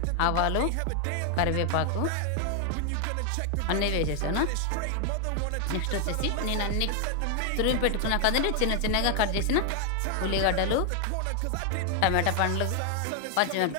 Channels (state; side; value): different; both; correlation 0.00